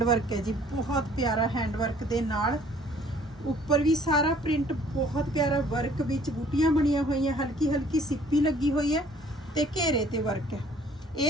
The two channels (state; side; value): normal; both; correlation 0.57